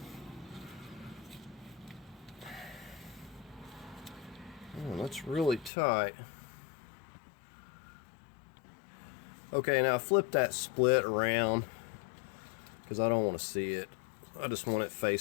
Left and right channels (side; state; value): right; drops out; at 5.7 s